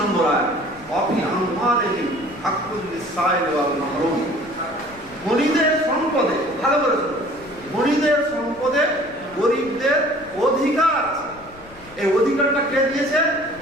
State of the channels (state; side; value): noise; left; rumble, 22 dB below the sound